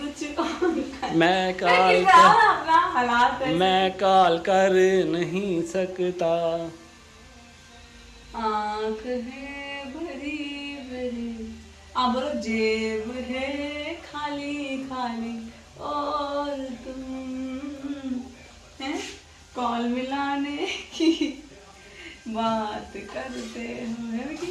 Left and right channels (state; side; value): identical; both; correlation 1.00